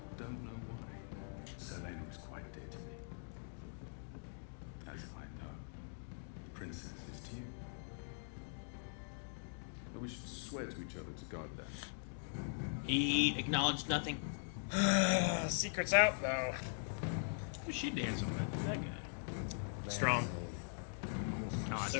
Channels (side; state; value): right; silent; digital silence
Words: don't know why. Sir Lena is quite dear to me. As I know, the princess is to you. But we should swear to each other to guard that. He acknowledged nothing. Secret's out, though. Who's she dancing with? That guy. Strong. No, I